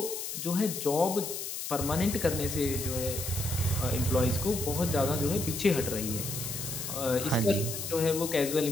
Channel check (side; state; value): left; noise; hiss, 5 dB below the sound